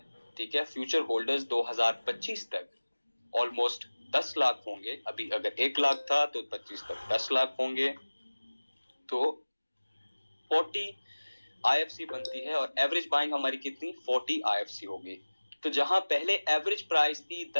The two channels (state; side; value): inverted; both; correlation -1.00